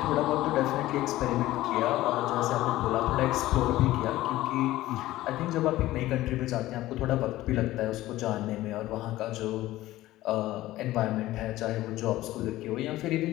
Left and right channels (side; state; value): right; quieter; 16.1 dB